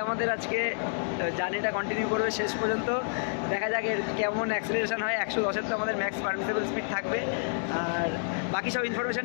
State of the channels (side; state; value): right; silent; digital silence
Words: আমাদের আজকে জার্নিটা কন্টিনিউ করবে শেষ পর্যন্ত। দেখা যাক এর কেমন অ্যাক্সেলারেশন হয়। 110-এর তো আমাদের ম্যাক্স পারমিসেবল স্পিড থাকবে। আর বাকি সব ইনফরমেশান